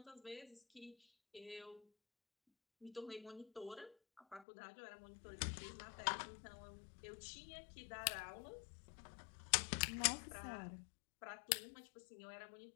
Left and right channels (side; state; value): right; drops out; at 4.5 s